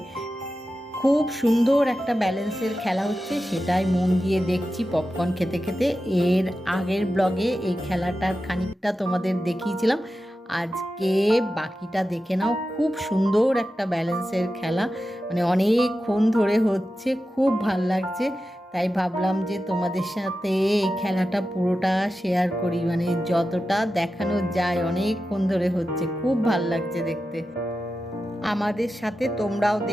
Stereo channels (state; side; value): normal; both; correlation 0.92